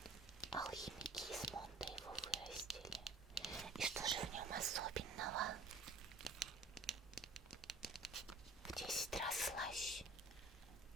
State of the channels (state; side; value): quieter; left; 3.3 dB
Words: Алхимики из Монда его вырастили. И что же в нем особенного? В 10 раз слаще,